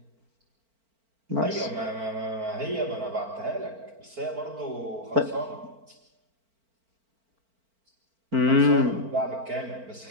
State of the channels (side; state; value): left; late; 4.4 ms